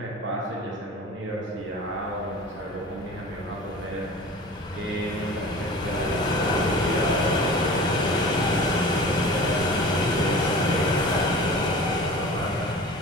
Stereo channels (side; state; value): both; normal; correlation 0.39